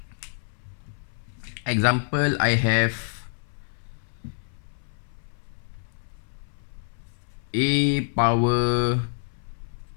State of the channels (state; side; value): silent; right; 60 dB below the other